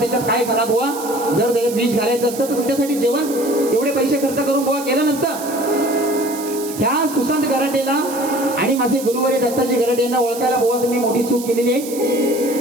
काय घाला. बुवा जर त्याच्यात विष घालायचं असतं तर तुमच्यासाठी जेवण एवढे पैसे खर्च करून बुवा केलं नसतं. ह्या सुशांत गराटेला आणि माझे गुरुवारी दत्ताजी गराटे यांना ओळखायला बुवा तुम्ही मोठी चूक केलेली आहे.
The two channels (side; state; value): right; noise; hiss, 12 dB below the sound